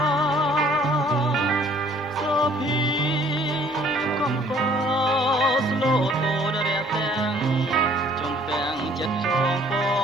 សូភីកំពស្លូតូដរះទាំងចំពាំងចិត្តចងប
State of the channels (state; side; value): normal; both; correlation 0.57